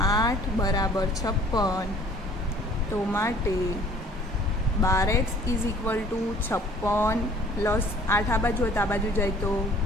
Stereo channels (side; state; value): both; normal; correlation 0.53